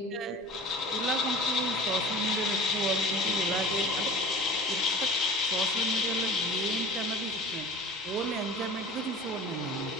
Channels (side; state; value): both; normal; correlation 0.40